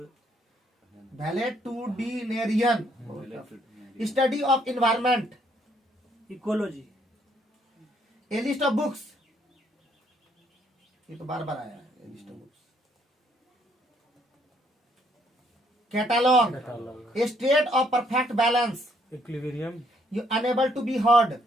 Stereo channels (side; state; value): both; normal; correlation 0.68